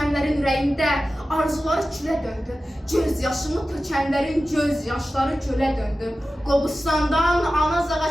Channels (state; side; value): normal; both; correlation 0.94